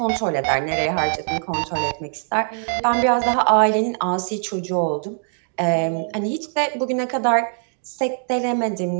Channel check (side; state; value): left; silent; digital silence